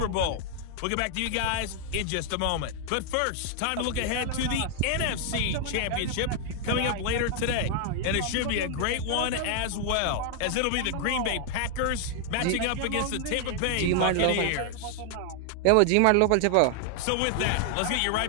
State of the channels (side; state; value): both; different; correlation 0.00